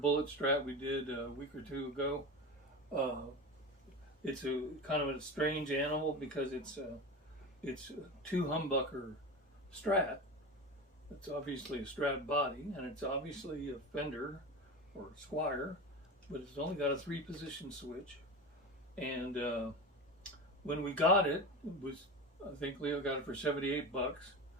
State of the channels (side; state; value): both; normal; correlation 0.26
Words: Strat we did a week or two ago. It's a kind of a strange animal because it's a two humbucker Strat. It's obviously a Strat body, and it's obviously a Fender or Squier, but it's only got a 3-position switch. And when we got it, I think Leo got it for 78 bucks.